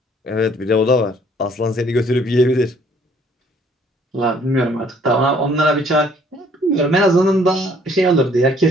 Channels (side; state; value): both; normal; correlation 0.61